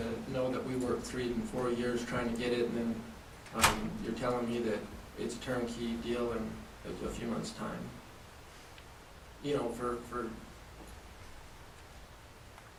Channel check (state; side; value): identical; both; correlation 1.00